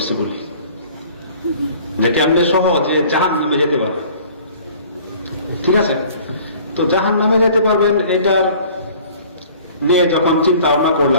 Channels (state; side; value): inverted; both; correlation -0.50